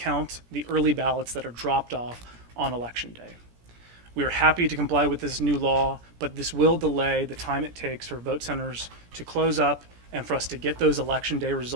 the early ballots that are dropped off on election day. We are happy to comply with this new law, but this will delay the time it takes for vote centers to close up and for us to get those election day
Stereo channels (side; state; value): left; late; 17 ms